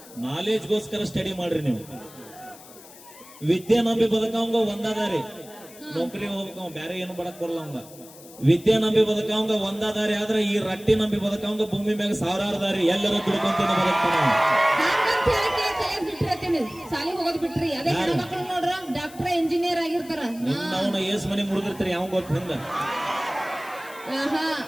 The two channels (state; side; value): noise; left; hiss, 20 dB below the sound